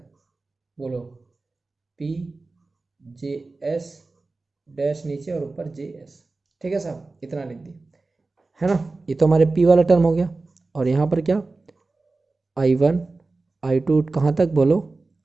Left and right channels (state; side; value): quieter; left; 3.5 dB